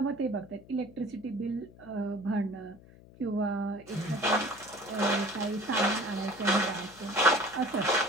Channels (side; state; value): left; noise; hum, 22 dB below the sound